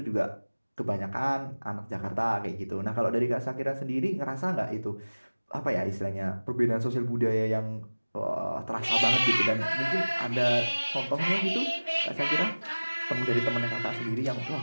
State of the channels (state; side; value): inverted; both; correlation -1.00